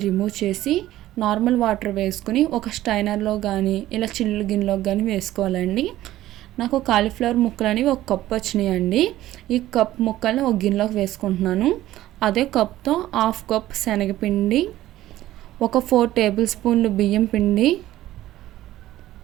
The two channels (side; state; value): left; quieter; 14.6 dB